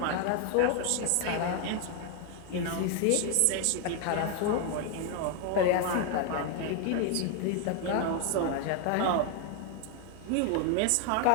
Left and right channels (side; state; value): both; different; correlation 0.00